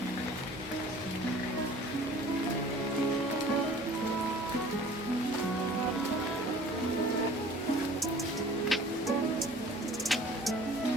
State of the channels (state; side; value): normal; both; correlation 0.48